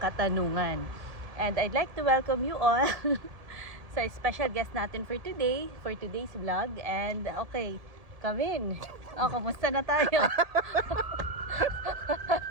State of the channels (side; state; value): left; late; 1.7 ms